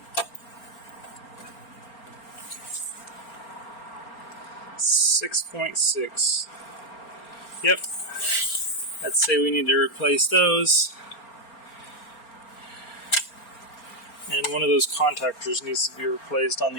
.6. Yep. I'd say we need to replace those. And one of those contactors needs to be replaced on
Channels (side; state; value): right; late; 4.4 ms